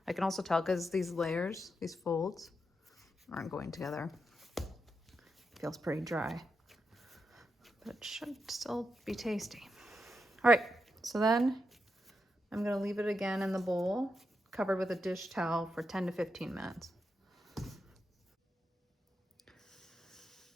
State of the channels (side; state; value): both; normal; correlation 0.85